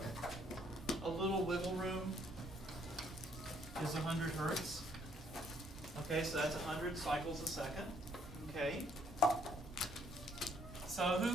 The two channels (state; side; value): normal; both; correlation 0.67